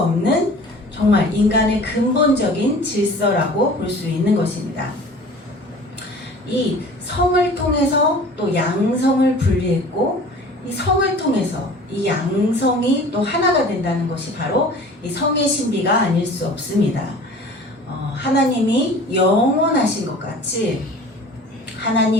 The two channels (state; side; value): normal; both; correlation 0.44